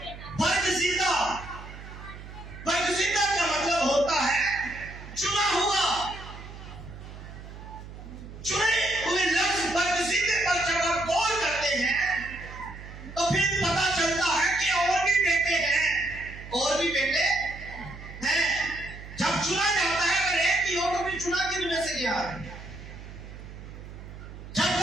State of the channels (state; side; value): noise; right; hum, 14 dB below the sound